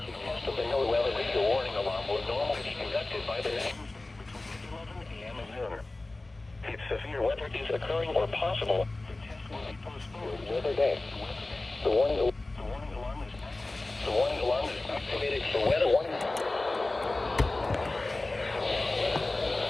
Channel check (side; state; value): right; quieter; 3.0 dB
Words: NOAA weather radio warning alarm will normally be conducted by the between 11 a.m. and noon. If severe weather is occurring or possible, the test will be postponed weather day. The warning alarm is activated for weather warning.